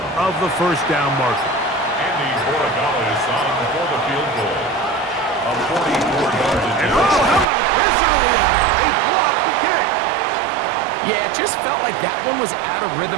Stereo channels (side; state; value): left; drops out; at 7.5 s